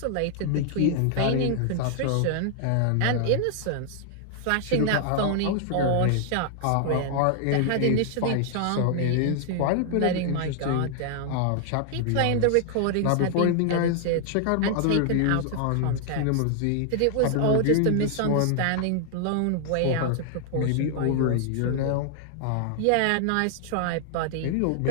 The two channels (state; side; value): different; both; correlation 0.00